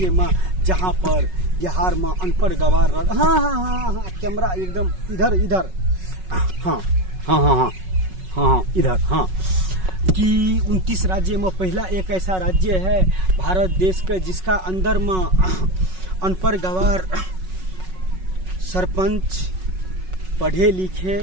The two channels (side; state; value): left; late; 5.4 ms